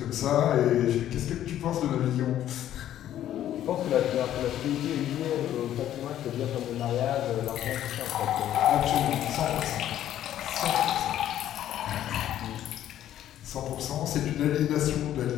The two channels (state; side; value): quieter; right; 11.8 dB